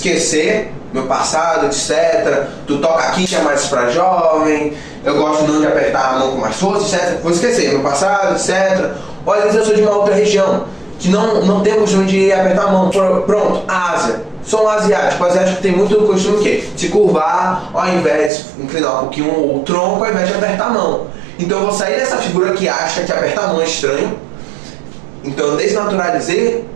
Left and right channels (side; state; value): left; drops out; at 18.3 s